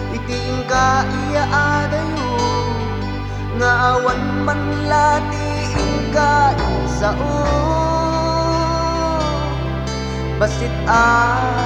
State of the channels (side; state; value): both; identical; correlation 1.00